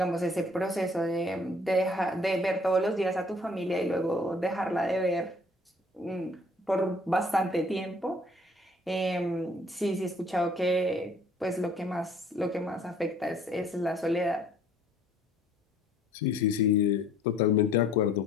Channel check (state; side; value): normal; both; correlation 0.57